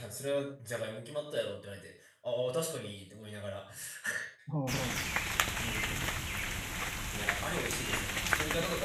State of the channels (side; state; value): both; identical; correlation 1.00